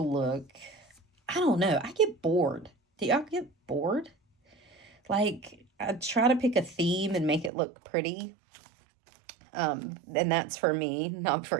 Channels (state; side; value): drops out; left; at 7.5 s